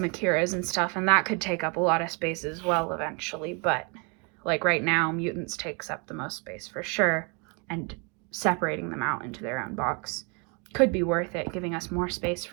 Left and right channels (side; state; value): left; quieter; 33.4 dB